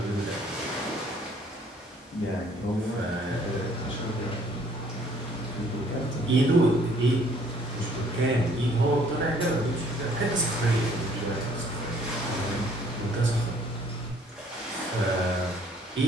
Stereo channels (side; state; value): both; normal; correlation 0.60